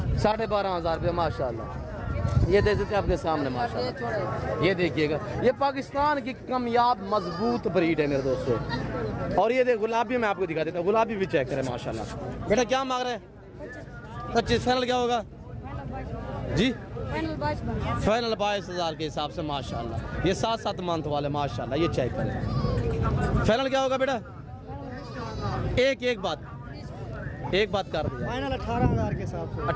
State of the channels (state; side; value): identical; both; correlation 1.00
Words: 12,500 रुपये माशाल्लाह। ये दे देते आपके सामने माशाल्लाह। ये देखिएगा, ये पाकिस्तान की कामयाब मजबूत ब्रीड है मेरे दोस्तों। और ये देख गुलाबी मैं आपको दिखा देता हूँ, गुलाबी भी चेक करें माशाल्लाह। बेटा क्या मांग रहे हैं? 25। फाइनल क्या होगा जी? फाइनल 22,000 के हिसाब से माशाल्लाह। ये 7-7 मंथ वाले माशाल्लाह, ये चेक करें। फाइनल क्या होगा बेटा? एक बात कर दिया। फाइनल 18,000 के हिसाब से।